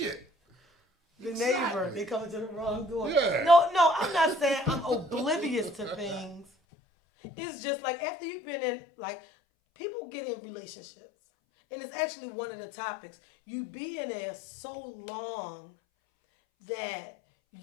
get? The Exactly. neighbor, they coming to the wrong door. Yeah. No, I'm not saying I'm oblivious to things. It's just like after you've been in, like, people get in relationships, and it's actually one of the topics. You be in there so long that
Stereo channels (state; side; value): drops out; right; at 6.5 s